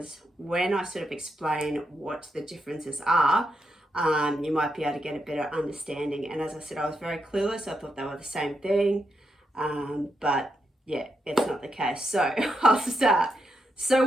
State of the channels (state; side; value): normal; both; correlation 0.82